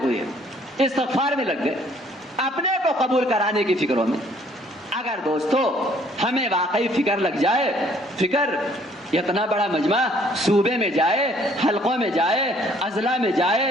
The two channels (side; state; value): both; normal; correlation 0.61